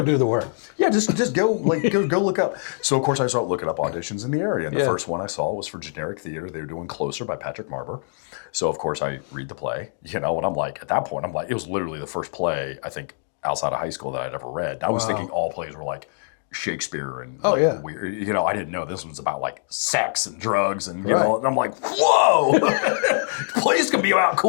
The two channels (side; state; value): right; silent; digital silence